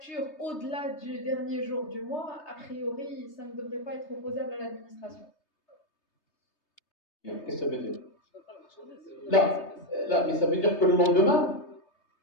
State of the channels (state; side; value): late; right; 3.3 ms